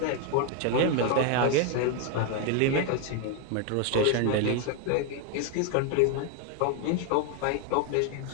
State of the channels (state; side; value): different; both; correlation 0.01